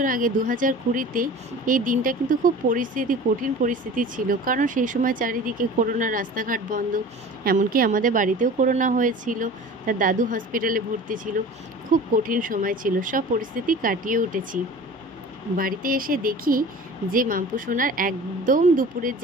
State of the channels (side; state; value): both; normal; correlation 0.40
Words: আগে ২০২০-তে এই দিনটা কিন্তু খুব কঠিন পরিস্থিতি ছিল। কারণ সেই সময় চারিদিকে করোনা, রাস্তাঘাট বন্ধ, এমনকি আমাদের বাড়িতেও করোনা হয়েছিল। তার দাদু হসপিটালে ভর্তি ছিল। খুব কঠিন সময় ছিল, সব পরিস্থিতি কাটিয়ে উঠেছি। বাড়িতে এসে দেখি যে মাম্পু সোনার একদম দুপুরের